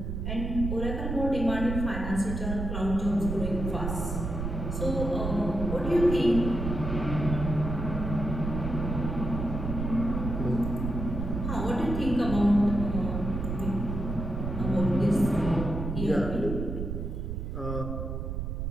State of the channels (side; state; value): right; noise; rumble, 4 dB below the sound